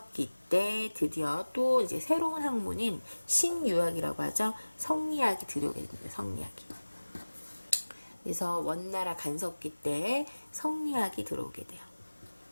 때 드디어 또 이제 새로운 학문인 신유학이라고 하죠. 성리학이 들어오게 됩니다. 성리학이. 그래서 원나라 간섭기 때 성리학이 들어오게 돼요.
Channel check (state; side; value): inverted; both; correlation -1.00